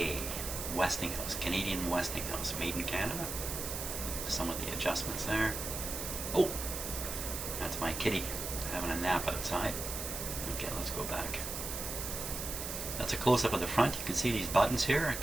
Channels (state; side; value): noise; right; hiss, 5 dB below the sound